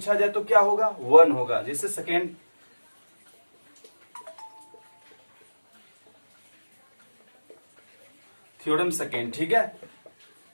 जाए तो क्या होगा 1 होगा। जैसे सेकेंड थ्योरम सेकेंड, ठीक है,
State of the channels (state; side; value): inverted; both; correlation -1.00